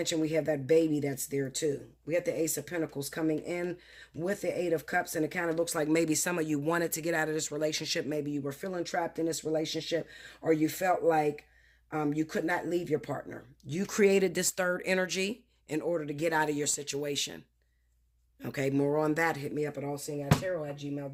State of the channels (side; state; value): both; identical; correlation 1.00